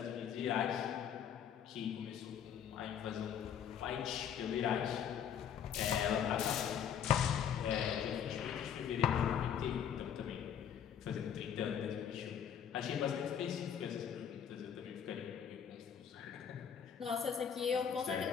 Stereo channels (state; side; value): quieter; right; 8.5 dB